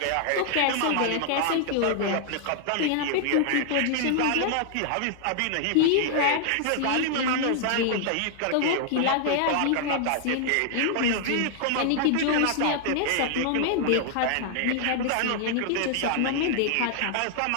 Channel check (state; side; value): different; both; correlation 0.00